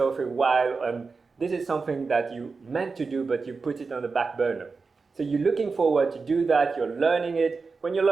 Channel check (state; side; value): quieter; left; 4.5 dB